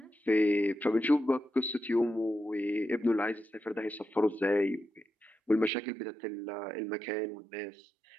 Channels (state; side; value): drops out; left; at 5.7 s